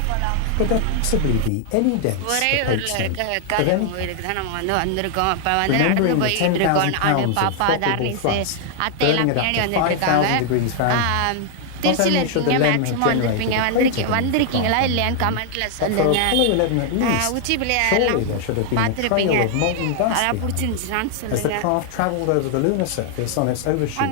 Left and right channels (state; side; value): different; both; correlation 0.00